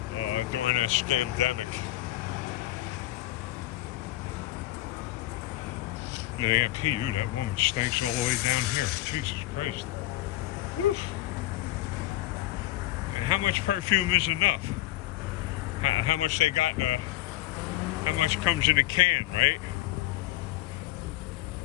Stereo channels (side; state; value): right; quieter; 16.0 dB